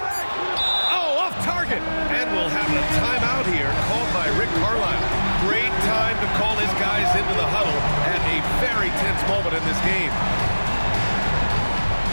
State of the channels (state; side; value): inverted; both; correlation -1.00